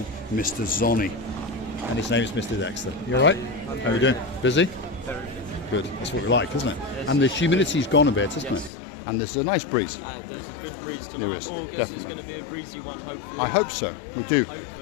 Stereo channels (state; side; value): drops out; right; at 8.7 s